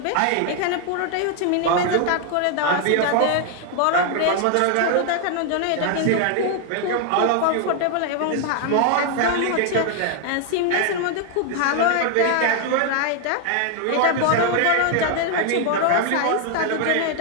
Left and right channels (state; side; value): different; both; correlation 0.00